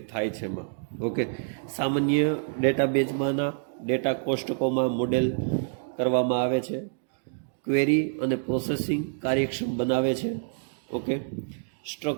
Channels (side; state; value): left; silent; digital silence